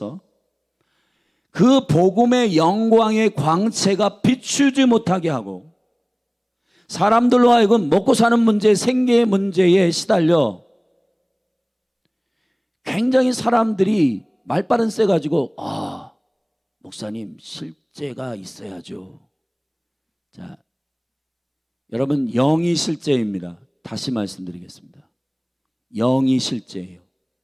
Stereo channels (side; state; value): both; identical; correlation 1.00